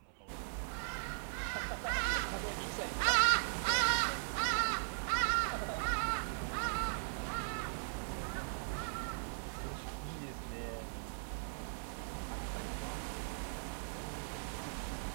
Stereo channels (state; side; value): silent; left; 52 dB below the other